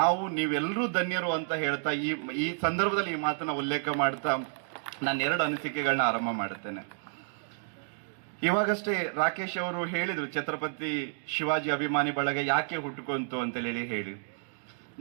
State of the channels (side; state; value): left; silent; digital silence